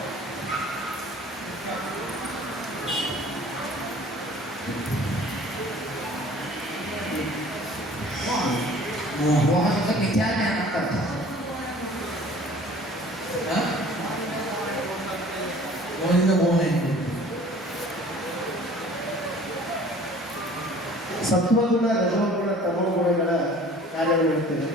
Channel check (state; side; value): normal; both; correlation 0.49